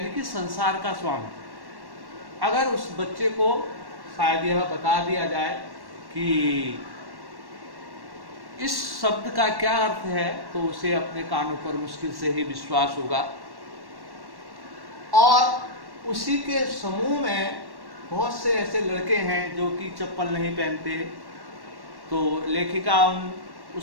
कि संसार का स्वामी। अगर उस बच्चे को शायद यह बता दिया जाए कि इस शब्द का क्या अर्थ है तो उसे अपने कानों पर मुश्किल से ही विश्वास होगा। और उसी के समूह में बहुत से ऐसे लड़के हैं जो कि चप्पल नहीं पहनते। तो लेखिका उन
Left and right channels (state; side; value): late; left; 1.1 ms